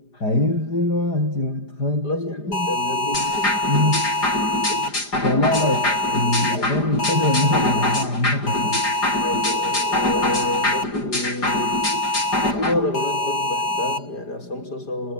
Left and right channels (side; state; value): right; late; 5.0 ms